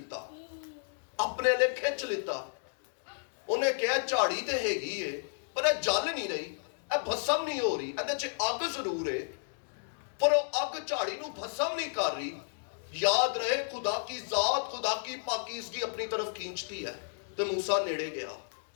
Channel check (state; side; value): silent; right; digital silence